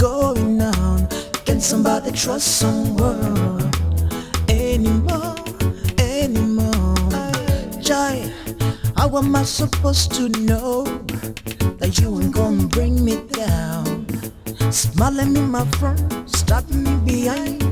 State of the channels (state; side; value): identical; both; correlation 1.00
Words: Can somebody trust someone anymore? Jai, how am I supposed to know that you ain't gonna bring me down? Smiling in my front, stabbing me behind.